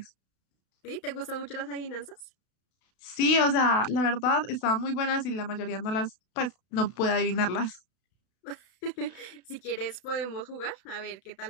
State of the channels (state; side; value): late; right; 32 ms